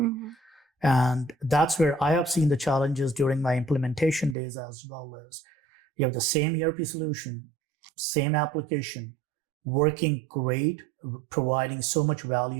And that's where I have seen the challenges during my implementation days as well. As you have the same ERP solution, same application, working great, providing so much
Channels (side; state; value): left; drops out; at 4.4 s